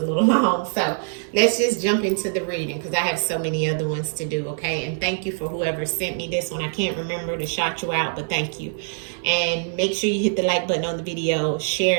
little long. So let's just jump into the reading because I have so many other ones to do, okay? And thank you for whoever sent me this one. I can't remember to shout you out, but thank you. And make sure you hit the like button on the video,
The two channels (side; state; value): left; silent; 58 dB below the other